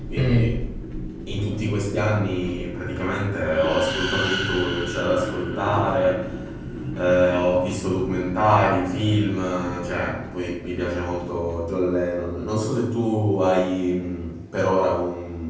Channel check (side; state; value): both; identical; correlation 1.00